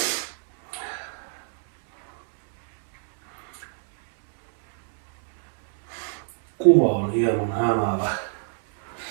Kuva on hieman hämäävä.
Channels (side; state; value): left; silent; 62 dB below the other